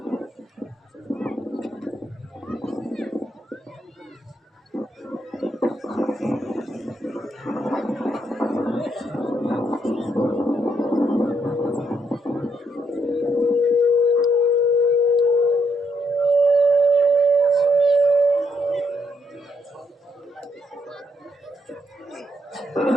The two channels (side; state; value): both; normal; correlation 0.75